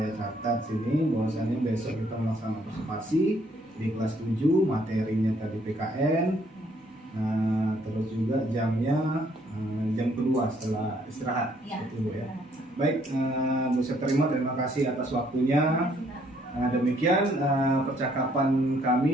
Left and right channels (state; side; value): normal; both; correlation 0.66